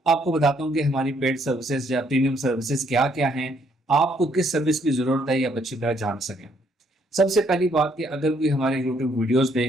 आपको बताता हूँ कि हमारी पेड सर्विसेज या प्रीमियम सर्विसेज क्या क्या हैं, आपको किस सर्विस की ज़रूरत है, ये आप अच्छी तरह जान सकें। सबसे पहली बात कि अगर कोई हमारे यूट्यूब वीडियोस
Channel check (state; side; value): normal; both; correlation 0.69